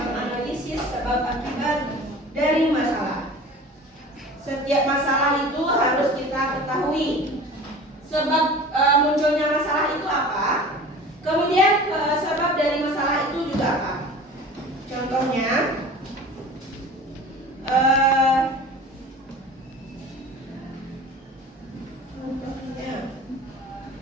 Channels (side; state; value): both; normal; correlation 0.40